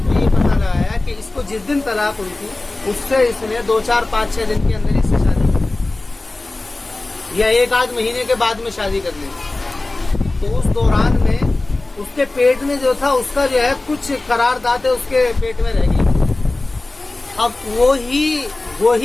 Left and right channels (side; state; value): right; quieter; 3.0 dB